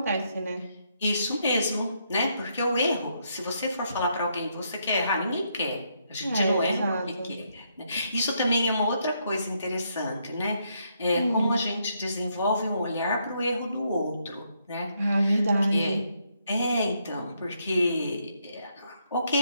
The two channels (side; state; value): both; inverted; correlation -0.76